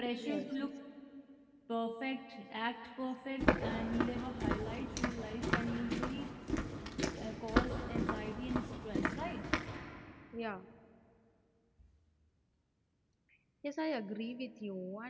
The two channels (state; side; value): identical; both; correlation 1.00